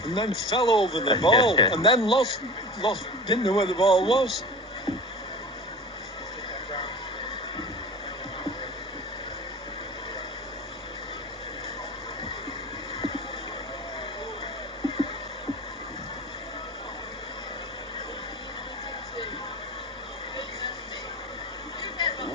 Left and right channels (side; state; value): both; normal; correlation 0.34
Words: and then fell over the ball and then lost, didn't know where the ball was.